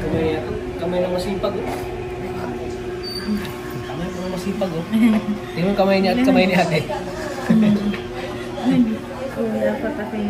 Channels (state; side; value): identical; both; correlation 1.00